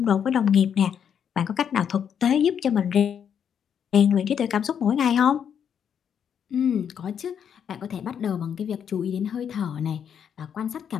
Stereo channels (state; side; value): quieter; right; 8.1 dB